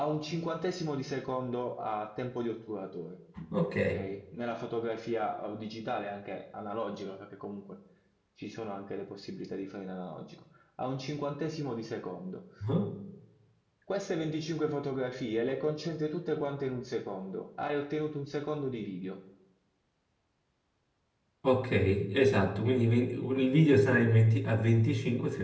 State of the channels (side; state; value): both; identical; correlation 1.00